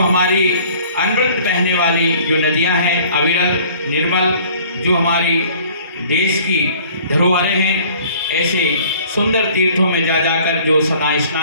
अमृत बहने वाली जो नदियां हैं, अविरल निर्मल, जो हमारी देश की धरोहरें हैं, ऐसे सुंदर तीर्थों में जा जाकर जो सदा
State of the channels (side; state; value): both; inverted; correlation -0.52